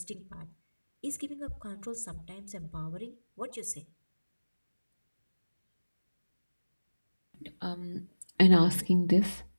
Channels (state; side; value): inverted; both; correlation -1.00